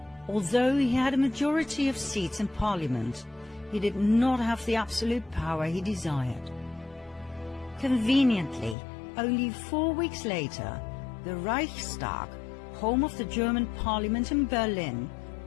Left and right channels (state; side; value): drops out; right; at 8.8 s